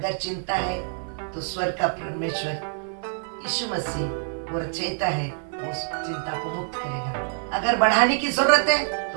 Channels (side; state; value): left; silent; digital silence